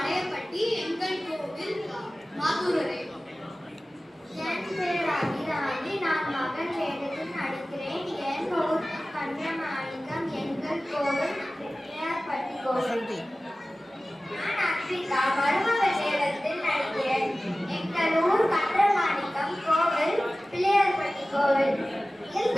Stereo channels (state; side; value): normal; both; correlation 0.97